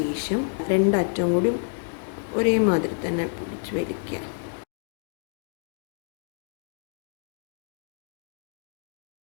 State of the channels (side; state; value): right; silent; 57 dB below the other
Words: രണ്ടറ്റം കൂടി ഒരേ മാതിരി തന്നെ പിടിച്ച് വലിക്കുക.